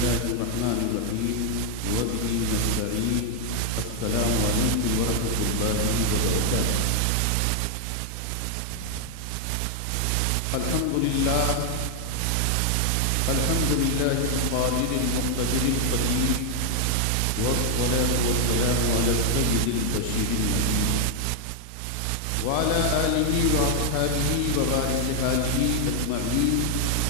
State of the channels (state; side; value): different; both; correlation 0.00